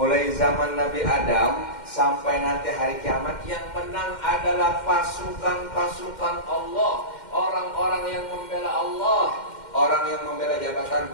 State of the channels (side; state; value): right; late; 2.1 ms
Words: zaman Nabi Adam sampai nanti hari kiamat yang menang adalah pasukan-pasukan Allah. Orang-orang yang membela Allah. Orang yang membela jabatan